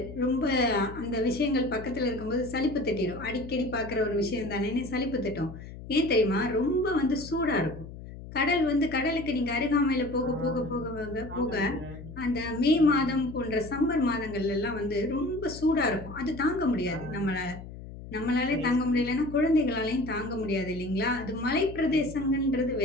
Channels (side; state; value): left; noise; hum, 13 dB below the sound